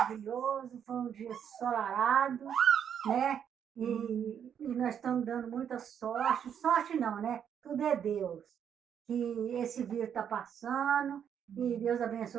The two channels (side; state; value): left; quieter; 8.5 dB